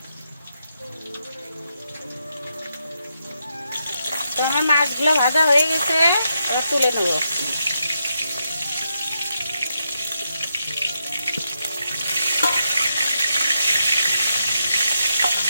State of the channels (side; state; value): both; inverted; correlation -0.82